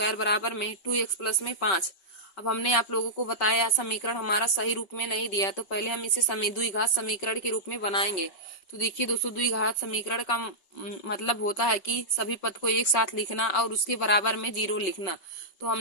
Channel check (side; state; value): right; late; 5.3 ms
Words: बराबर में 2x प्लस में 5। अब हमने आप लोगों को बताया समीकरण हमारा सही रूप में नहीं दिया, तो पहले हम इसे द्विघात समीकरण के रूप में बनाएंगे। तो देखिए दोस्तों द्विघात समीकरण का मतलब होता है कि सभी पद को एक साथ लिखना और उसके बराबर में 0 लिखना। तो